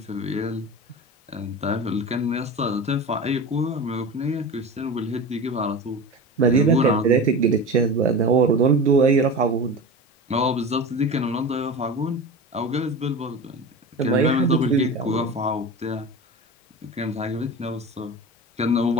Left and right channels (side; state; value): both; normal; correlation 0.30